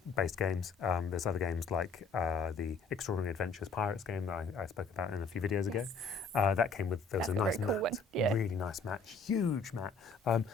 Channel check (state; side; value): quieter; right; 4.2 dB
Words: games. There's other games like the Extraordinary Adventures Pirates game that I spoke about in a few videos ago. That came with, there was a nice mat, really nice mat, huge mat,